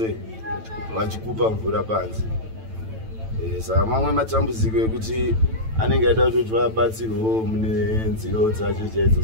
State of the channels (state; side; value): late; left; 9.0 ms